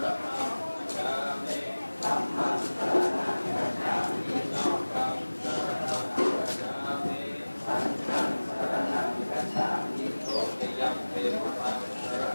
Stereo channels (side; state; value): both; inverted; correlation -1.00